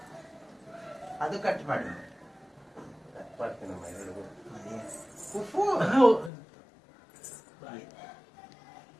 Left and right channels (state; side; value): drops out; right; at 6.3 s